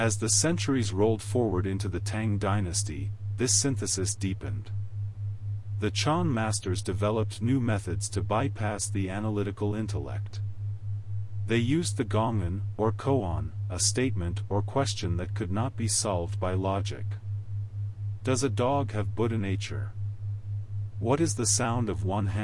the centuries rolled forward into the Tang dynasty, this synthesis deepened. The Chan masters developed new methods to bypass the analytical intellect. They used the gongan, or koan, a statement or question that could not be solved by logic. Does a dog have Buddha nature? What is the sound of one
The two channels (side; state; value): both; identical; correlation 1.00